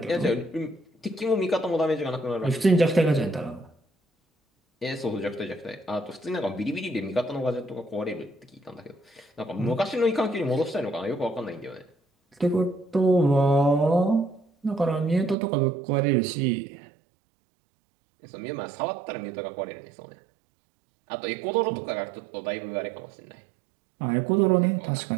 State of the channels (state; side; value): drops out; left; at 15.4 s